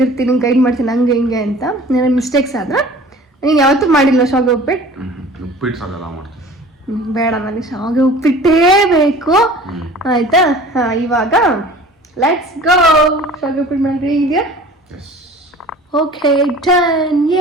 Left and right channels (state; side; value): normal; both; correlation 0.45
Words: ಇರ್ತೀನಿ, ಗೈಡ್ ಮಾಡ್ತೀನಿ ಹಂಗೆ ಹಿಂಗೆ ಅಂತ. ನನ್ನ ಮಿಸ್ಟೇಕ್ಸ್ ಆದ್ರೆ ನೀನು ಯಾವತ್ತೂ ಮಾಡಿಲ್ಲ ಶಾವಿಗೆ ಉಪ್ಪಿಟ್ಟು? ಉಪ್ಪಿಟ್ಟು ಸಾಗೆಲ್ಲ ಮಾಡ್ತೀನಿ. ಬೇಡ, ನನಗೆ ಶಾವಿಗೆ ಉಪ್ಪಿಟ್ಟೇ ಬೇಕು. ಆಯ್ತಾ? ಇವಾಗ ಲೆಟ್ಸ್ ಗೋ. ಶಾವಿಗೆ ಉಪ್ಪಿಟ್ಟು ಮಾಡಿ ಇದೆಯಾ? Okay, done!